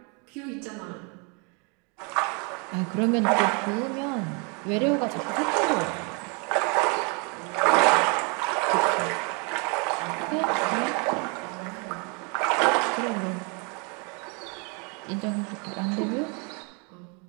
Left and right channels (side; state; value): left; quieter; 33.5 dB